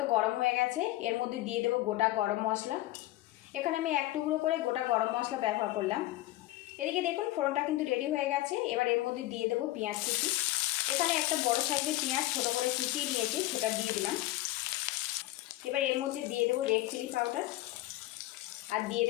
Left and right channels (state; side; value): quieter; right; 17.0 dB